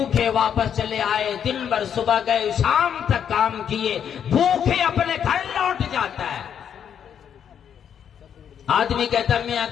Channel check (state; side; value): quieter; right; 8.5 dB